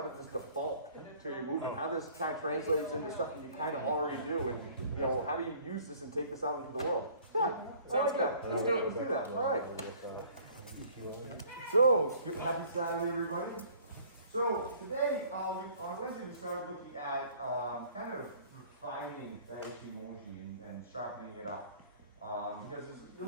this default to your movement? How does this kind of translates into stuff that you kind of already do? And, how do you use this and take this out into the world? Yeah, I like that. Let's do it. Let's do that. All right. So, happy Saturday, everybody. So, today, on Wednesday, we started looking at kind of refining that Ichimonji and sharpening it up. Because it's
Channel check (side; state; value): both; inverted; correlation -0.54